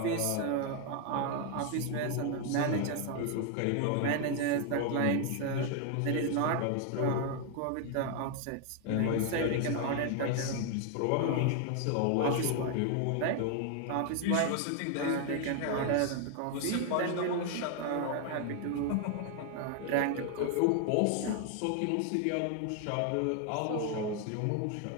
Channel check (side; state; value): both; different; correlation 0.00